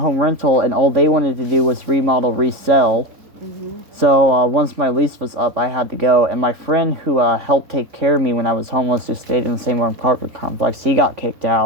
Rental, and all they wanted to do was remodel, resell. So once my lease was up, I had to go. And my friend who helped take care of me when I was homeless, who stayed in the same apartment complex, he got kicked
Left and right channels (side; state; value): left; late; 3.5 ms